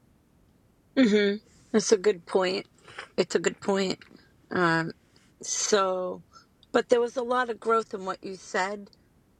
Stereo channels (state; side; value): identical; both; correlation 1.00